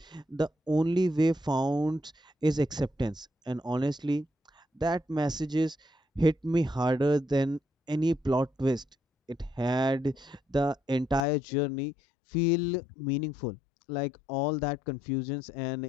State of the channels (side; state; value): right; drops out; at 11.2 s